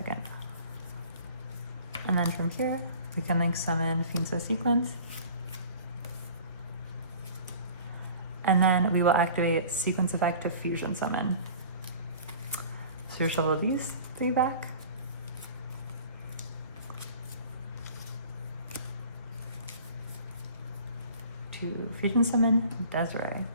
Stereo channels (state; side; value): inverted; both; correlation -0.44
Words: And then from here, we can link summon Fiendso Sequence. And then we will activate Sequence effect to fusion summon. So you shuffle these three back. To fusion summon Desirae.